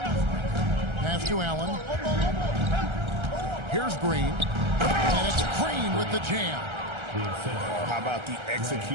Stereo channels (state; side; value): late; left; 1.3 ms